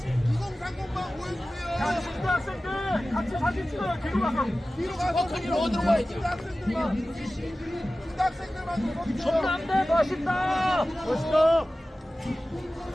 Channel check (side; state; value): both; normal; correlation 0.96